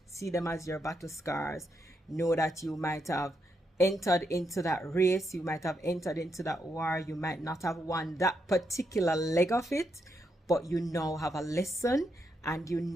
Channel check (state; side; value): normal; both; correlation 0.81